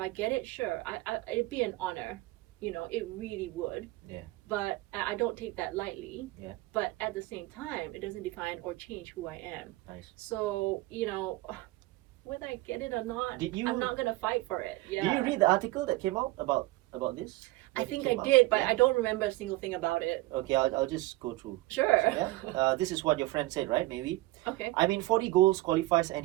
get it, sure, it'd be an honor. It really would. Yeah. But I don't take that lightly. Yeah. But at the same time, it doesn't define or change who I am. Nice. So, whether I get it or not, I'm not gonna fight for it. Yeah. Did you read the article that came out about this? I think I did, but I don't remember a single thing about it. Okay, I'll just go through. Sure. So, this is what your friend said, right? Maybe. Okay. 40 goals qualifies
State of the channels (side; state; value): left; quieter; 19.4 dB